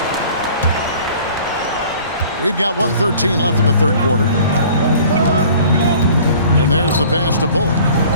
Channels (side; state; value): both; inverted; correlation -0.49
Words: We've got 1:13 left in the third quarter. And there's the pass to Bullock.